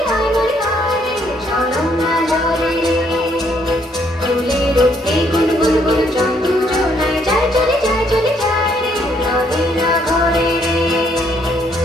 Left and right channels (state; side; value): normal; both; correlation 0.69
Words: হাই মরি হাই রে ঝরম না ঝরে রে ফুলের উঠতে গুল গুল গুল চন্দু জোনায় যায় চলে যায় রে রহে না ঘরে রে